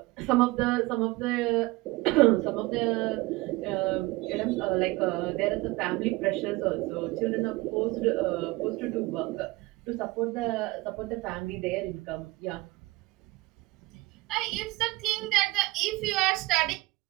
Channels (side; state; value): left; quieter; 21.0 dB